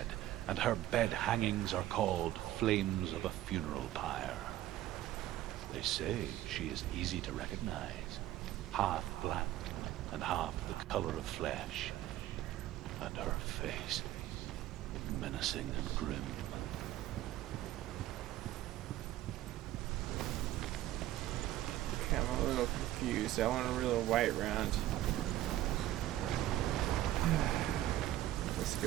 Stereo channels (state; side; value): quieter; left; 14.2 dB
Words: and her bed hangings are called flames of a funeral pyre. They say she is easy to recognize, half black and half the color of flesh, and her face menacing and grim. Okay, I'm a little confused. I want a real white round. Let's